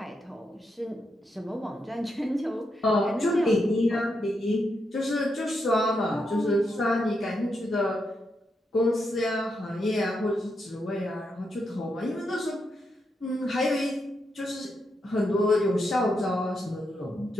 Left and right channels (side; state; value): both; normal; correlation 0.82